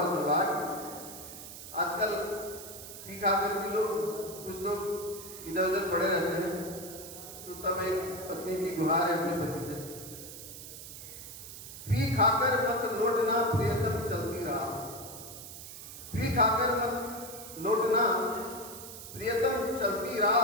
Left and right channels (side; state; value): right; noise; hiss, 12 dB below the sound